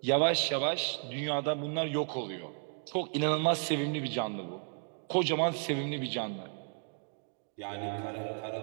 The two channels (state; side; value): silent; left; 55 dB below the other